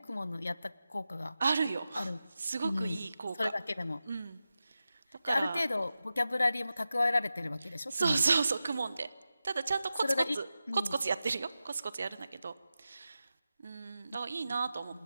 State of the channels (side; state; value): both; inverted; correlation -0.93